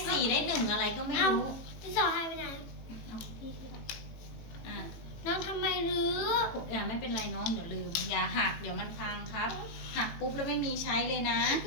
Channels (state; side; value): late; right; 18 ms